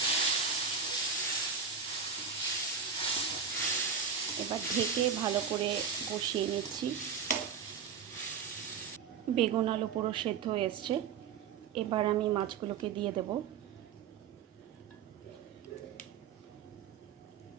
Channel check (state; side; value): quieter; left; 6.6 dB